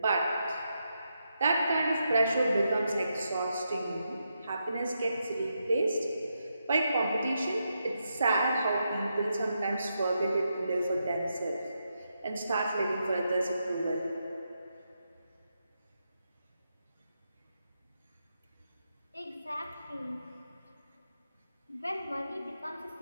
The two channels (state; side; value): inverted; both; correlation -0.84